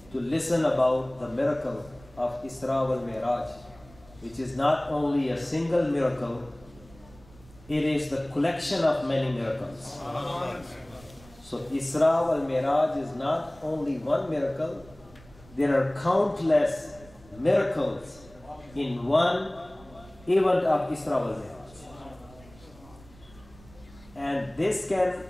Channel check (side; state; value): right; noise; rumble, 23 dB below the sound